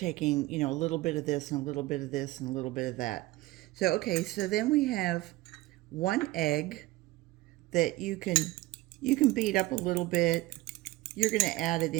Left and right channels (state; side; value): quieter; left; 18.6 dB